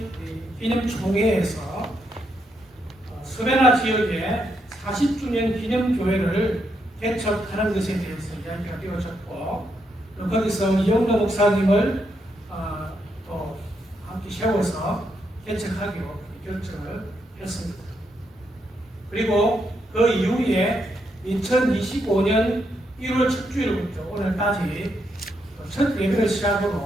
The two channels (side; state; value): both; normal; correlation 0.79